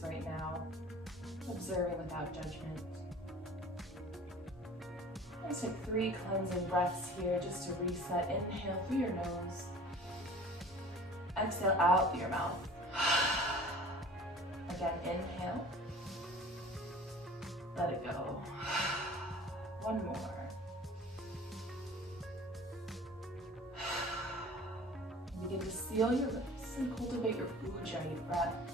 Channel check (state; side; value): normal; both; correlation 0.45